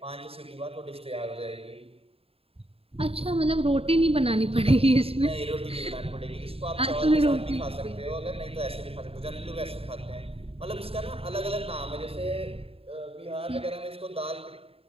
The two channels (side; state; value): left; late; 0.28 ms